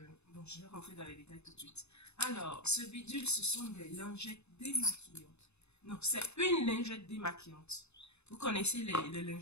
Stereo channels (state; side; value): late; right; 0.80 ms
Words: Bon, je vais rentrer dans les détails tout de suite. Alors, ce bidule, ce sont des lingettes démaquillantes. Non, c'est une lingette démaquillante. Vous connaissez les